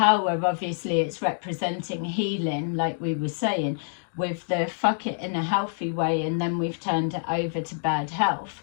obviously, it's representing healing, like we were saying, with the fuck it in a healthy way, and then we've turned it over to bad health.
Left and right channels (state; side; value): silent; right; digital silence